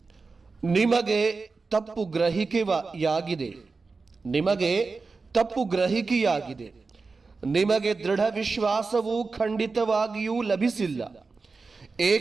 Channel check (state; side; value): quieter; left; 4.2 dB